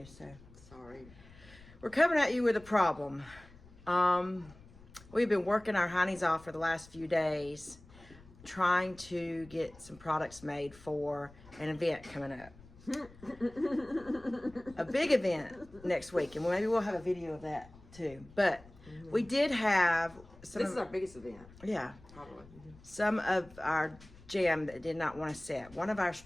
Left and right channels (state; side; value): noise; left; rumble, 22 dB below the sound